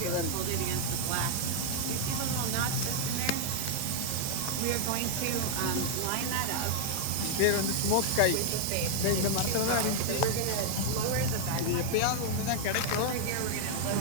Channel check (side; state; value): both; different; correlation -0.01